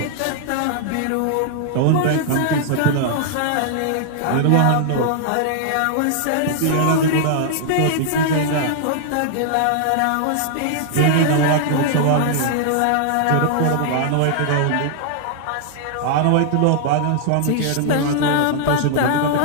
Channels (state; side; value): different; both; correlation -0.01